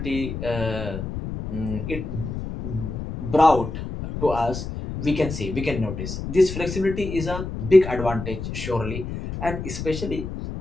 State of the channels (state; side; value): noise; left; rumble, 6 dB below the sound